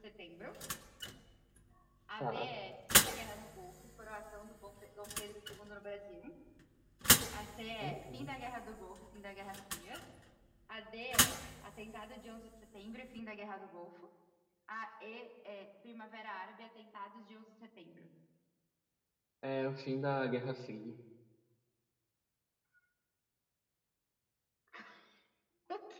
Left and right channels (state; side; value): identical; both; correlation 1.00